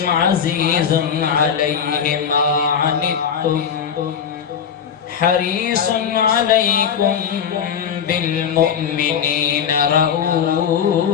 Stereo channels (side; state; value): right; quieter; 7.7 dB